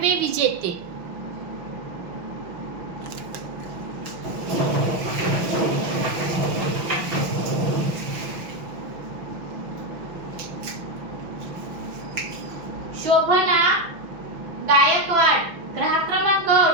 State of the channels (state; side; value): late; left; 6.0 ms